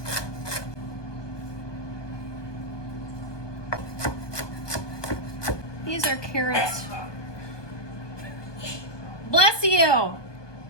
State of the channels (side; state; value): right; late; 1.2 ms